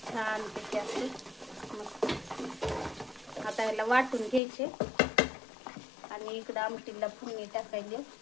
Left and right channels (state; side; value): drops out; right; at 4.4 s